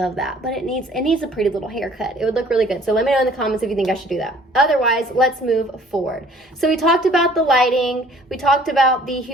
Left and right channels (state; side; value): normal; both; correlation 0.55